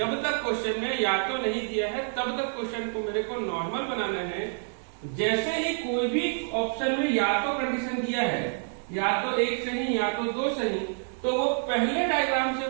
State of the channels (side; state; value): left; silent; 59 dB below the other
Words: तक क्वेश्चन में या तो नहीं दिया है तब तक क्वेश्चन को मेरे को नॉर्मल बनाना है। जैसे ही कोई भी ऑप्शन में या तो कंडीशन दिया है, या तो एक सही या तो दो सही, तो वो पहले डायग्राम से